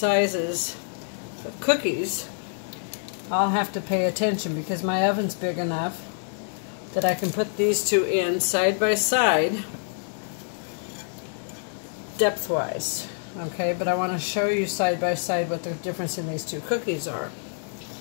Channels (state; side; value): silent; right; digital silence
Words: of cookies, I'll have to pay attention because my oven's big enough that I can put these 2 in side by side, depth-wise. Okay, but I want to show you side by side what the difference in these 2 cookies are.